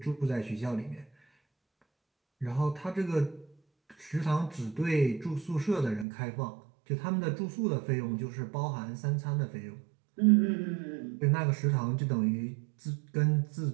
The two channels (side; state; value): left; drops out; at 6.1 s